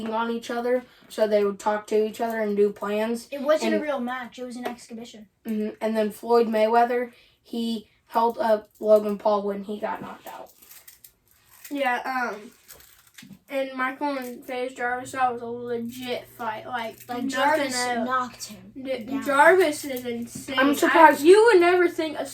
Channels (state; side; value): identical; both; correlation 1.00